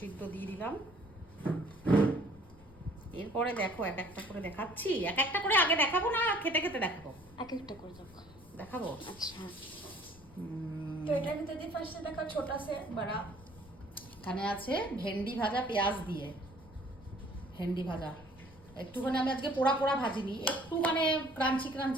দিয়ে দিলাম। এরপরে দেখো এক একটা করে দেখাচ্ছি, এক একটা করে আগে দেখাবো না খেতে খেতে দেখাবো? এক একটা করে দেখাবো। আচ্ছা, তো এটার ভিতরে দিয়ে ফার্স্টে দেখা ছোটা সে বড়া। এখানে আছে ভেন্ডি ভাজা পেঁয়াজ দিয়ে, ভেন্ডি ভাজা একটুখানি আমি আজকে পোড়া পোড়া ভাজিনি, একটু মানে ক্রাঞ্চি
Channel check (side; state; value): left; noise; rumble, 22 dB below the sound